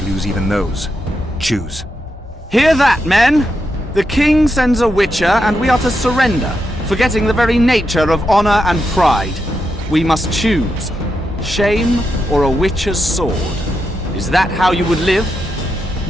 lose even those. Choose. Hear that, men! The king sends a witcher, and we are to surrender, forgetting the very nature of honor and pride. We must choose. Shame or a witcher's sword. Is that how you would live?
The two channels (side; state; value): both; normal; correlation 0.85